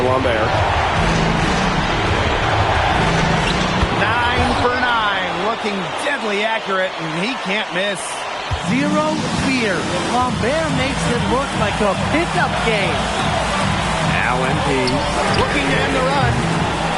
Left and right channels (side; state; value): both; identical; correlation 1.00